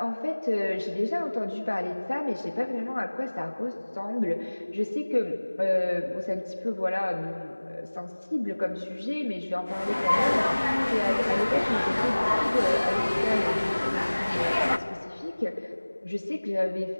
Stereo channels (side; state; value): both; inverted; correlation -1.00